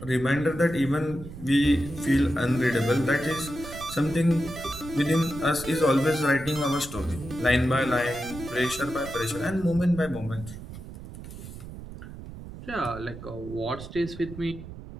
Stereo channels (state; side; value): noise; right; rumble, 13 dB below the sound